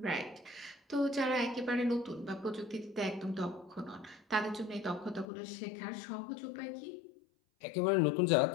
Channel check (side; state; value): right; drops out; at 5.2 s